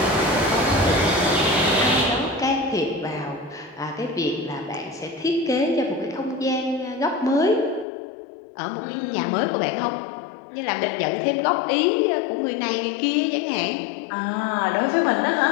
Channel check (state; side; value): drops out; right; at 7.9 s